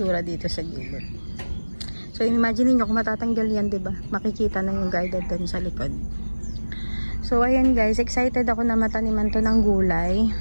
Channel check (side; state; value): both; inverted; correlation -1.00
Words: dito sa gilid. So imagine nyo kung matatanggal yan, diba? Makikita na yung garden dun sa likod. So ayan guys, excited ako na mataniman to ng gulay.